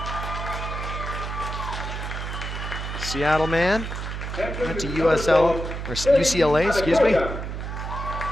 Seattle man, went to USL, or UCLA, excuse me.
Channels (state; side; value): noise; right; hum, 5 dB below the sound